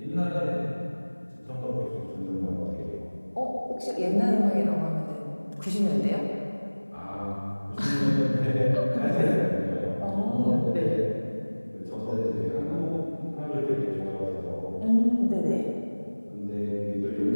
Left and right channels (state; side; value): inverted; both; correlation -1.00